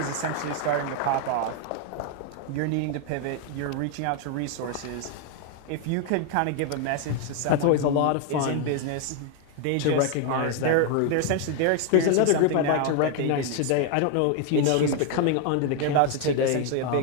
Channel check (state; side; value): different; both; correlation 0.01